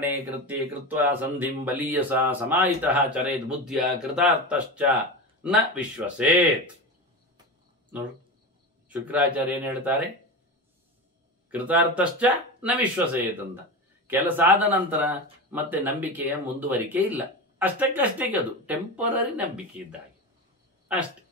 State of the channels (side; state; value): both; normal; correlation 0.24